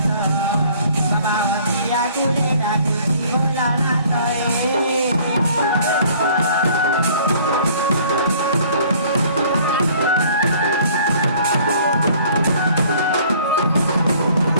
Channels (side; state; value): both; inverted; correlation -0.55